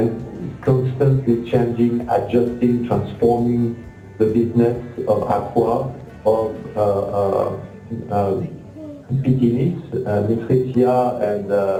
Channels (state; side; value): identical; both; correlation 1.00